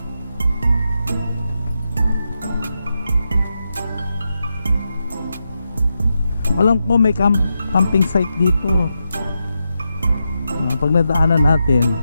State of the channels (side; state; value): both; inverted; correlation -0.87